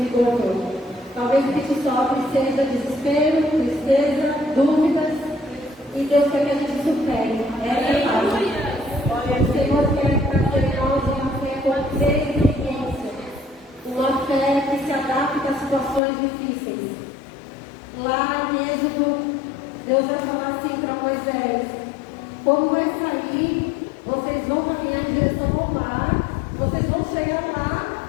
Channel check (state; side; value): drops out; right; at 16.0 s